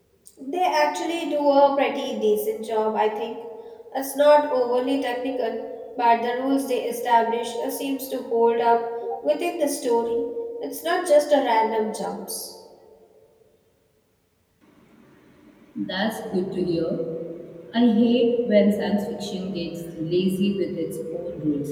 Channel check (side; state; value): both; identical; correlation 1.00